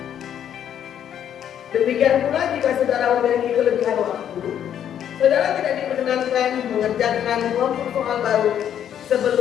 Demikian pula jika saudara memiliki kelebihan waktu, saudara tidak diperkenankan mengerjakan kelompok soal baru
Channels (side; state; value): right; quieter; 9.7 dB